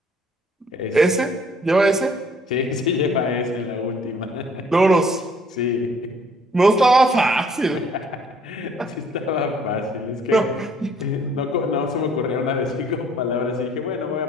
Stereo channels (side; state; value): both; normal; correlation 0.60